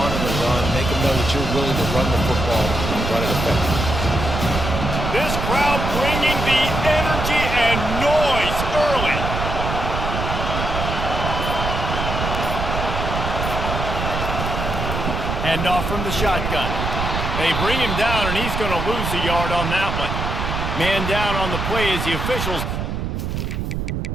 the run. Make them know that you're willing to run the football and run it effectively. This crowd bringing the energy and noise early. Handoff from the shotgun. They bring him down, and he's going to lose a yard on that one. Man down on the play as the officials.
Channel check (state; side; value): noise; right; rumble, 3 dB below the sound